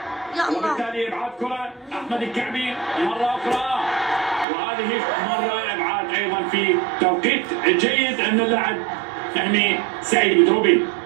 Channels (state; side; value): drops out; left; at 4.5 s